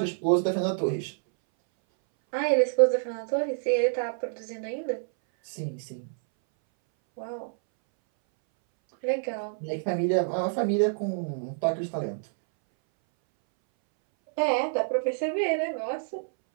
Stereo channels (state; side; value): silent; left; 60 dB below the other